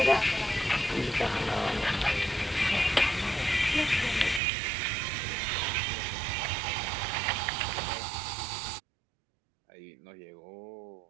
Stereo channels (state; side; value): drops out; left; at 4.4 s